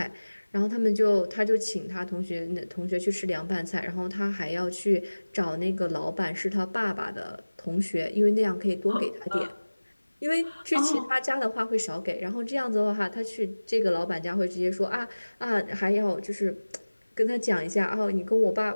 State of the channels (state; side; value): inverted; both; correlation -1.00